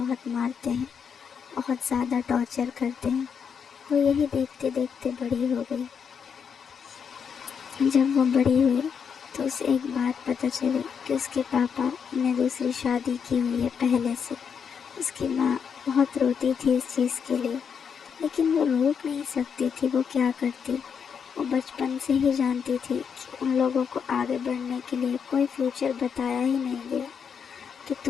मारते हैं, बहुत ज़्यादा टॉर्चर करते हैं। वो यही देखते देखते बड़ी हो गई। जब वो बड़ी हुई तो उसे एक बात पता चली कि उसके पापा ने दूसरी शादी की हुई है पहले से। उसकी माँ बहुत रोती थी इस चीज़ के लिए, लेकिन वो रोक नहीं सकती थी। वो क्या करती, वो बचपन से ही जानती थी कि उन लोगों को आगे बढ़ने के लिए कोई फ्यूचर बताया ही नहीं गया कि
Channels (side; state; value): right; quieter; 6.9 dB